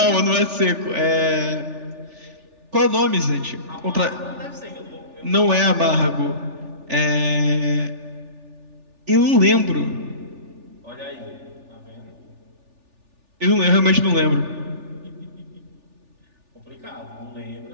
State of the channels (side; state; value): left; late; 3.4 ms